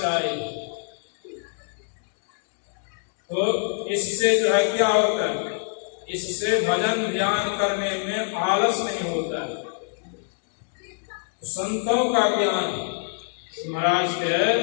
तो इससे जो है क्या होता है, इससे भजन ध्यान करने में आलस नहीं होता है। संतों का ज्ञान महाराज के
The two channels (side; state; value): right; silent; digital silence